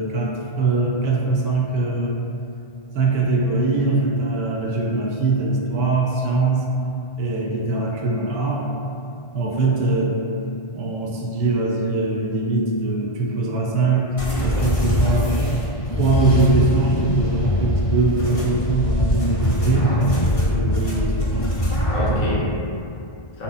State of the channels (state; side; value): late; right; 1.5 ms